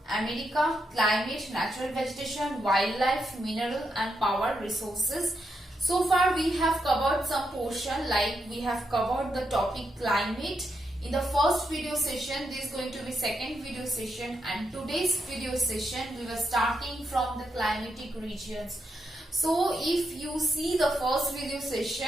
America, climate, natural vegetation, wildlife, mineral and power resources. So far we have covered some portion, like we have covered the topic climate in the first video session. This is going to be second video session, and today's video session we were starting from the climatic regions. So if you see the first video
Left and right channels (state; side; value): normal; both; correlation 0.82